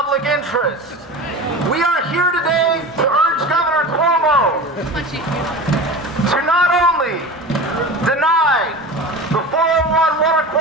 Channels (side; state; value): both; normal; correlation 0.31